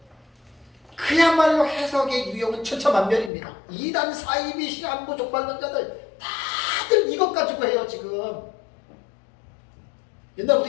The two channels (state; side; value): drops out; right; at 3.3 s